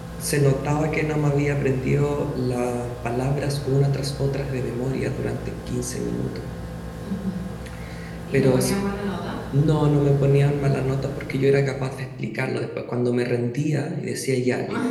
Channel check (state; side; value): identical; both; correlation 1.00